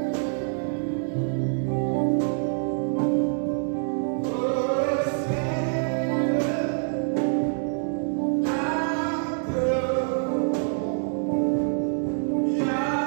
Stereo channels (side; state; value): left; silent; digital silence